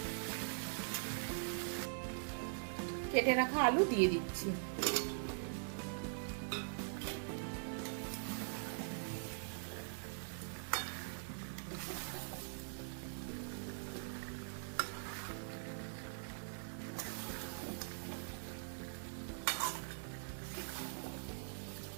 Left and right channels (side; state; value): left; silent; digital silence